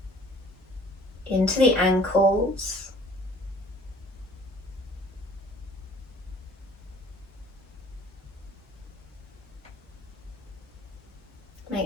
into the ankles.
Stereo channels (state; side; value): normal; both; correlation 0.53